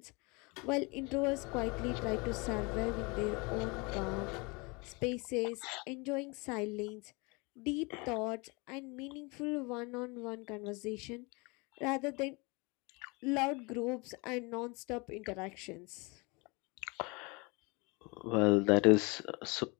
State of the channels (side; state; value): right; quieter; 28.1 dB